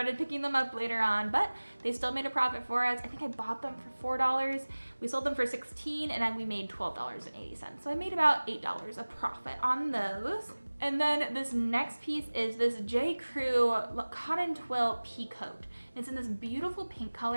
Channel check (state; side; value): inverted; both; correlation -1.00